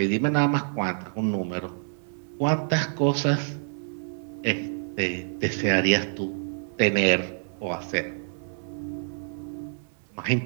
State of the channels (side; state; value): left; silent; 60 dB below the other